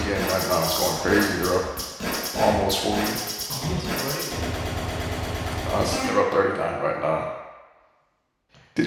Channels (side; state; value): both; identical; correlation 1.00